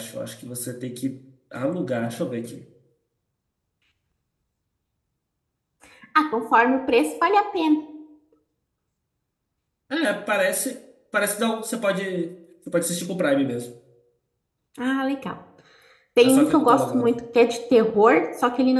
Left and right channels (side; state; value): both; identical; correlation 1.00